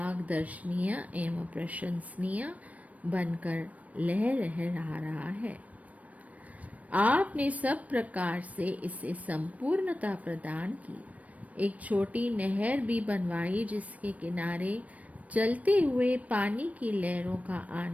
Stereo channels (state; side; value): late; left; 0.069 ms